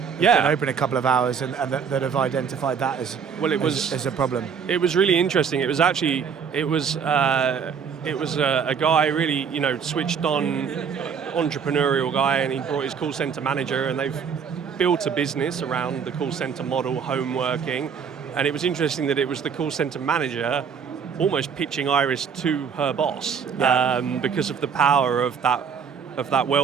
been open a couple of hours and that have identified that as a problem. It was really interesting. It was a guy really switched on, entrepreneurial guy, and he brought his call center manager, and they've built a business around the call center model, home working. And it was interesting that it was the call center manager almost pitching Iris to her boss because of the power of that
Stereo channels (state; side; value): quieter; left; 6.7 dB